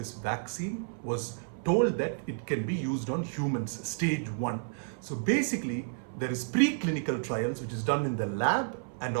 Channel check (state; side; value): silent; left; 56 dB below the other